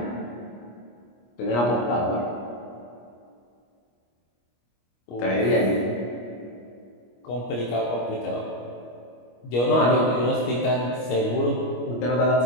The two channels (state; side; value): late; right; 25 ms